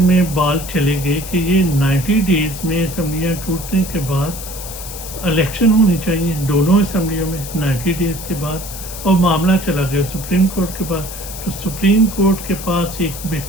بال چلے گئے کہ یہ 90 ڈیز میں اسمبلیاں ٹوٹنے کے بعد الیکشن ہونی چاہیے دونوں اسمبلیوں میں 90 ڈیز کے بعد، اور معاملہ چلا گیا سپریم کورٹ کے پاس۔ تو سپریم کورٹ کے پاس ایک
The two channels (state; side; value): noise; left; hiss, 11 dB below the sound